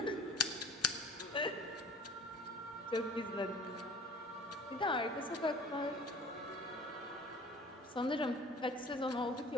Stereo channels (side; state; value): both; normal; correlation 0.46